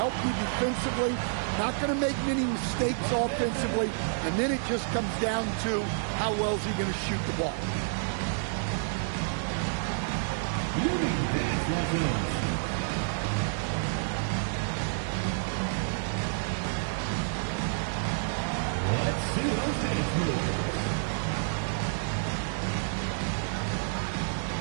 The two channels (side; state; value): left; silent; digital silence